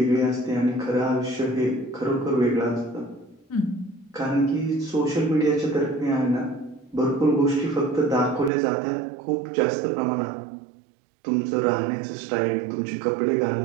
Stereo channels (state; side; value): drops out; left; at 8.5 s